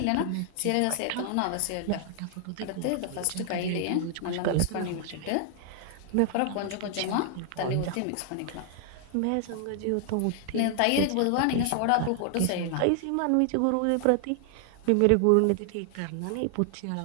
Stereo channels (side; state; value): both; different; correlation 0.00